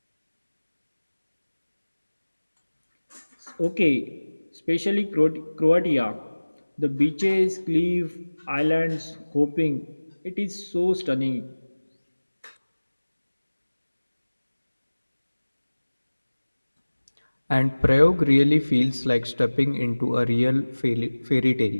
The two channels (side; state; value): both; inverted; correlation -1.00